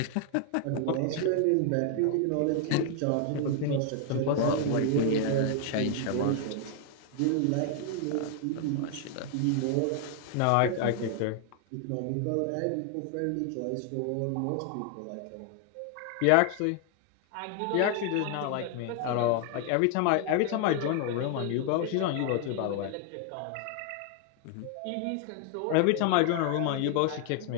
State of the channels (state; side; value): different; both; correlation 0.00